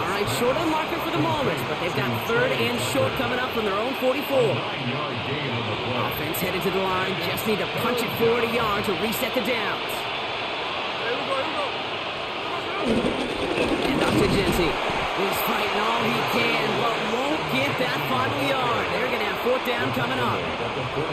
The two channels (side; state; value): both; identical; correlation 1.00